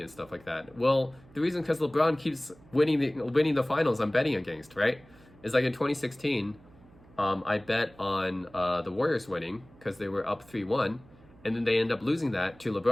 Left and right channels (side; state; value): right; noise; hum, 25 dB below the sound